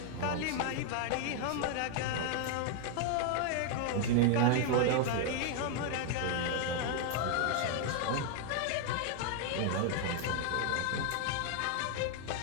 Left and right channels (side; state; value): both; different; correlation 0.00